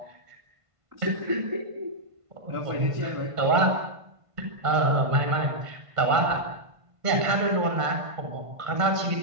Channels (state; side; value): late; left; 1.5 ms